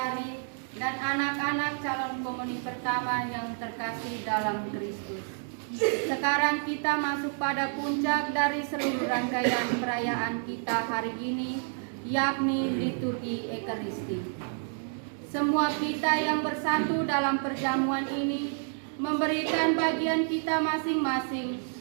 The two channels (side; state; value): left; silent; 58 dB below the other